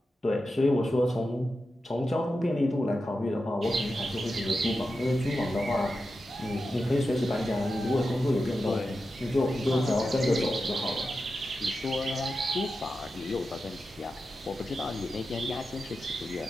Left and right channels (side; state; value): both; normal; correlation 0.90